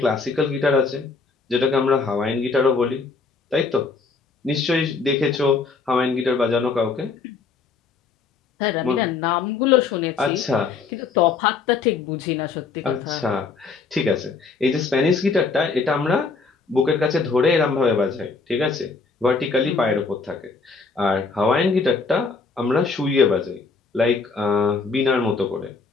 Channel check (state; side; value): quieter; right; 4.6 dB